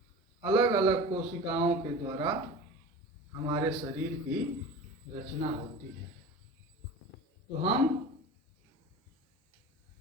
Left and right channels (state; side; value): normal; both; correlation 0.35